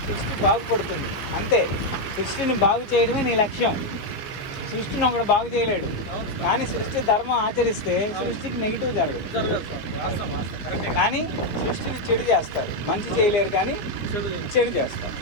సృష్టి బాగుపడుతుంది. అంతే, సృష్టిని బాగు చేయడమే నీ లక్ష్యం. సృష్టిని ఒకడు బాగు చేయలేడు, కానీ సృష్టి ధర్మం ఆచరిస్తే సృష్టికి నెగిటివ్ జరగదు. కానీ సృష్టిని చెడు చేస్తారు, మంచి చేయలేరు కానీ చెడు చేస్తారు.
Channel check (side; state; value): right; late; 14 ms